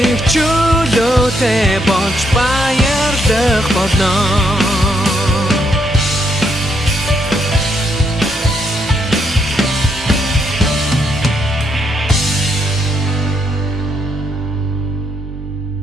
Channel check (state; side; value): normal; both; correlation 0.75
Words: чөлөөтэй болж баярлах болно.